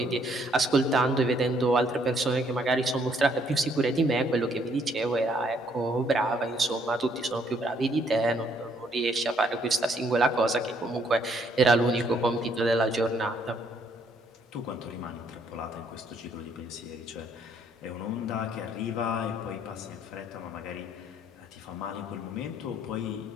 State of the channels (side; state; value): both; normal; correlation 0.67